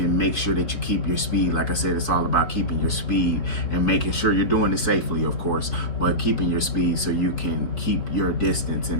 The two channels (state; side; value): late; right; 4.8 ms